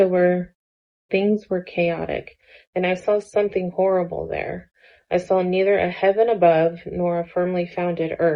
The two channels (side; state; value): both; identical; correlation 1.00